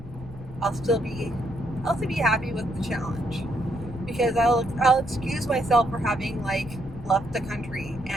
I'll still be happy with the challenge, because I'll excuse myself for having like left the country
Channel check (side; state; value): left; noise; rumble, 14 dB below the sound